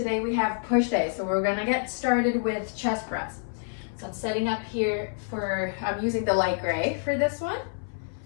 we have push day. So we're gonna get started with chest press. So I'm setting up here I'm using the light gray for this one.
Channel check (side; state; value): right; silent; 59 dB below the other